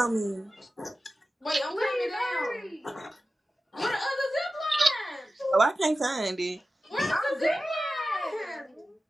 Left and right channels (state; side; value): normal; both; correlation 0.94